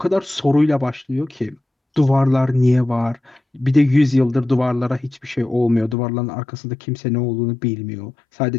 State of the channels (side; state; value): right; drops out; at 6.0 s